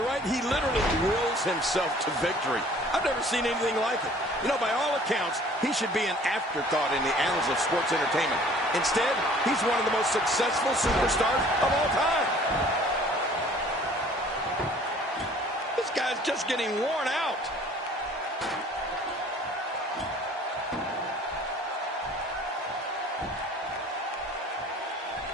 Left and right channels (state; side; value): normal; both; correlation 0.52